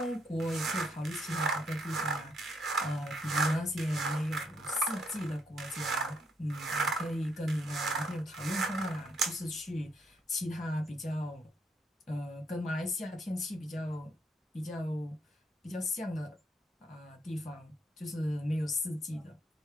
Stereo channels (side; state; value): both; normal; correlation 0.74